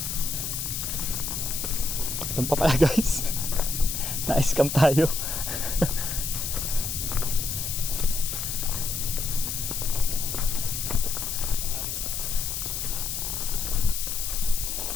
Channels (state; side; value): noise; left; hiss, 3 dB below the sound